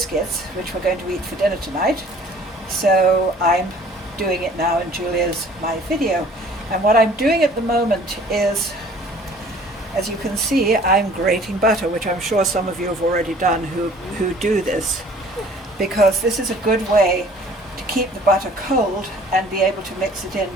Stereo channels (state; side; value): normal; both; correlation 0.52